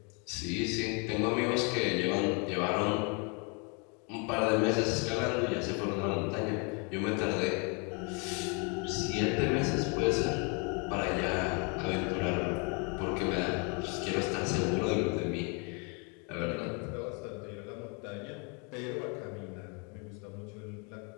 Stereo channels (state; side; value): quieter; right; 34.4 dB